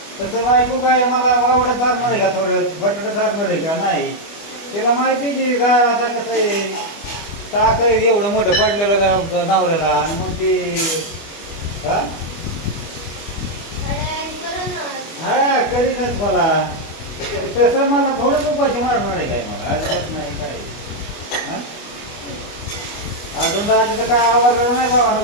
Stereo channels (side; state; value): right; late; 25 ms